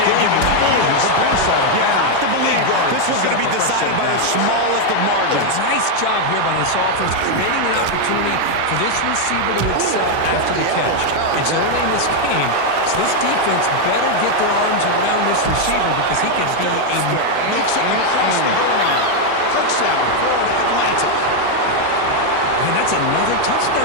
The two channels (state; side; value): different; both; correlation 0.01